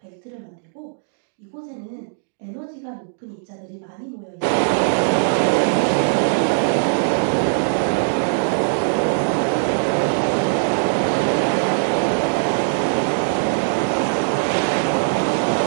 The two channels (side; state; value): left; silent; digital silence